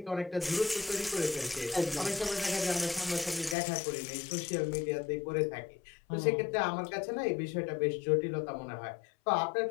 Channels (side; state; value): right; drops out; at 3.6 s